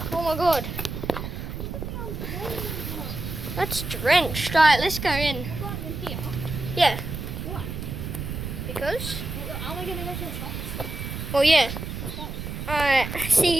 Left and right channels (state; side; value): noise; right; rumble, 6 dB below the sound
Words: Oh my god. That's drenched. Alright, let's go in. Yeah. Why? Because? Are we going to go to the shops? Oh yeah. Alright,